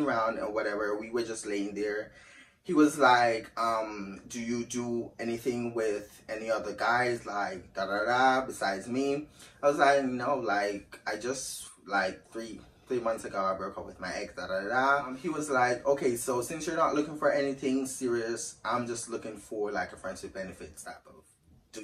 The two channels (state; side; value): identical; both; correlation 1.00